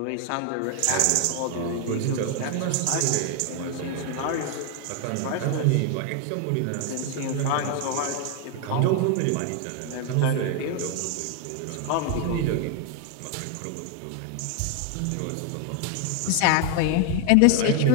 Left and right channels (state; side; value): different; both; correlation 0.00